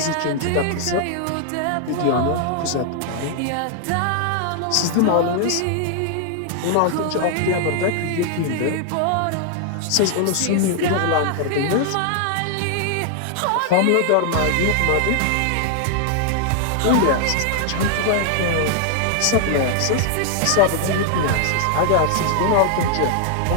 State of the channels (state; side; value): different; both; correlation 0.00